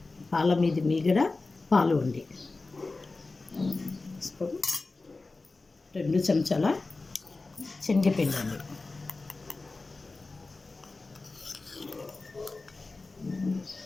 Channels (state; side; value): quieter; right; 3.5 dB